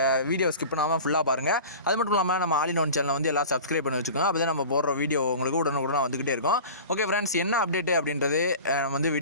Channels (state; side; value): inverted; both; correlation -0.37